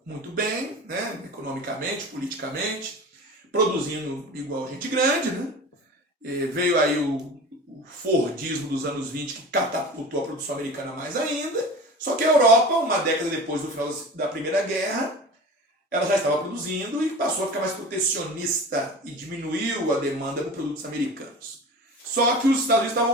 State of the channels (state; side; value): normal; both; correlation 0.35